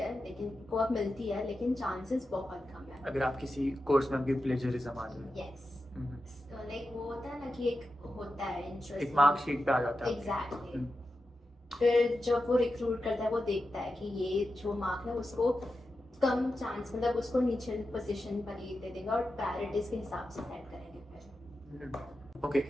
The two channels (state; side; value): normal; both; correlation 0.90